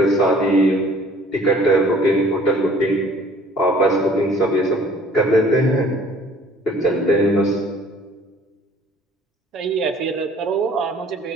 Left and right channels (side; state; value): both; normal; correlation 0.54